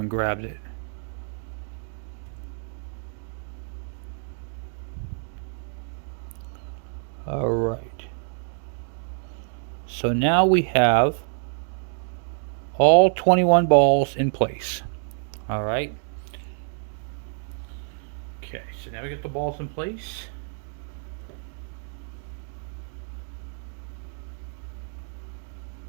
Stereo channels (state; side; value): silent; left; 60 dB below the other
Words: grabbed it. Alright. So now we have all 21 balls in place. All right. Okay, so now we get the balls in place.